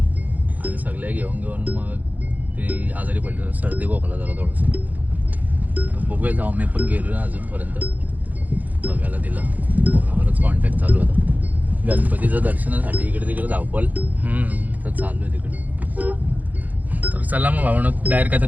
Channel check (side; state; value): left; late; 0.080 ms